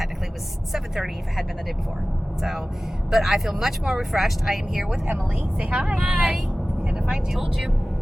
was 7:30 if it had been the day before. So, but I feel much more refreshed. I am here with Emily. Say hi. Hi. Gonna find you. Told you.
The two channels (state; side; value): normal; both; correlation 0.97